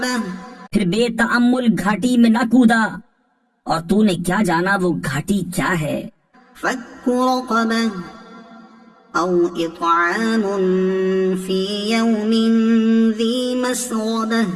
پھر بے تأمل گھاٹی میں نہ کودا، اور تو نے کیا جانا وہ گھاٹی کیا ہے؟ فک رقبہ او اطعام فی یوم ذی مسغبہ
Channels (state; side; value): identical; both; correlation 1.00